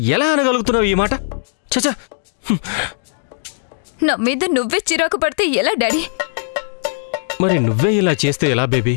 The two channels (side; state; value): right; silent; digital silence